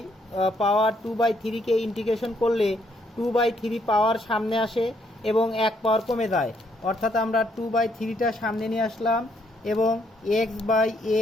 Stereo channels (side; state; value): both; normal; correlation 0.71